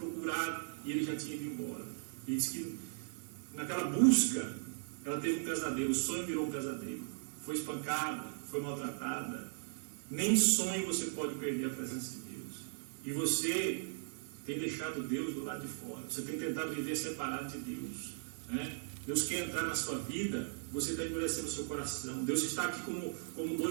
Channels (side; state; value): left; silent; 52 dB below the other